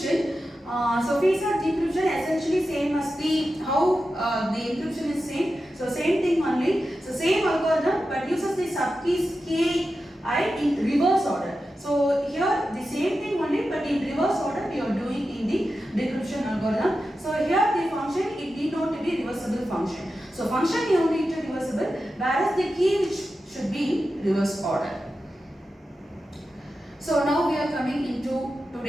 So Feaster decryption essentially same as the how the encryption is same. So same thing only. So same algorithm but uses the subkeys ki in reverse order. So here the same thing only but in reverse order we are doing in the decryption algorithm. So here the function it need not to be reversible function. So function is only to reversible, whereas the key which should be in reverse order. So now we are coming into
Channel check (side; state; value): both; normal; correlation 0.91